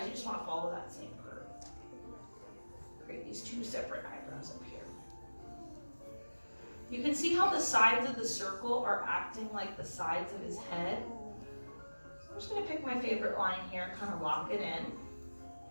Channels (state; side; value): inverted; both; correlation -1.00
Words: you just want to follow that same curve. Create these two separate eyebrows up here. You can see how the sides of the circle are acting like the sides of his head. I'm just going to pick my favorite line here and kind of lock it in.